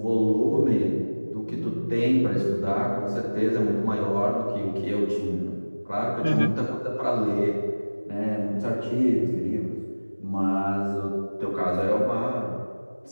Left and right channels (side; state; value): both; inverted; correlation -1.00